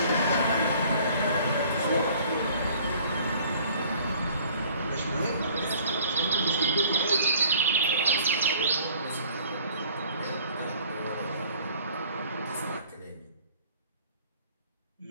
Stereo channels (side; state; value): both; inverted; correlation -0.54